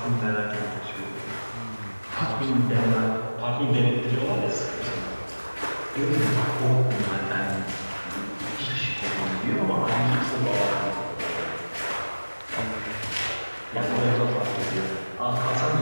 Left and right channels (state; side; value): inverted; both; correlation -1.00